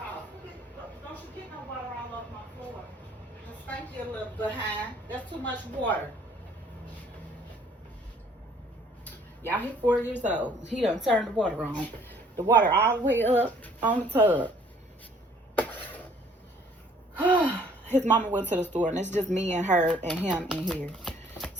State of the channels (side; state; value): both; normal; correlation 0.59